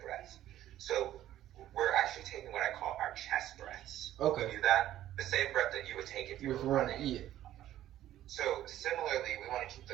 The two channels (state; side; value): quieter; left; 12.9 dB